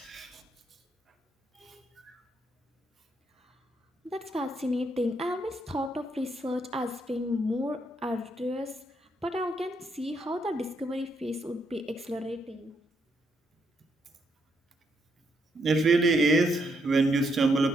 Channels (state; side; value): normal; both; correlation 0.76